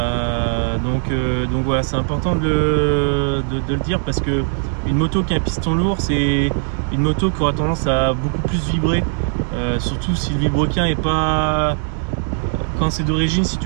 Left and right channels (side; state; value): left; silent; 56 dB below the other